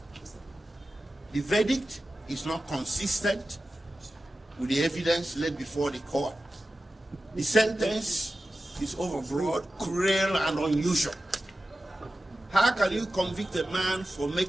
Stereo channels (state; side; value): normal; both; correlation 0.93